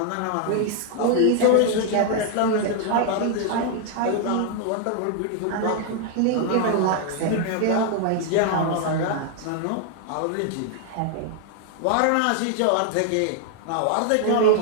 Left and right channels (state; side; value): different; both; correlation 0.00